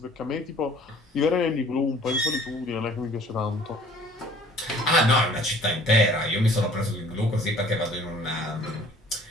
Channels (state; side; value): normal; both; correlation 0.52